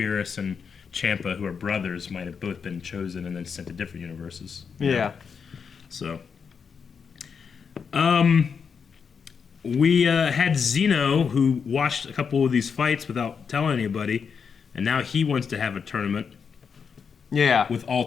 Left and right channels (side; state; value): right; quieter; 6.2 dB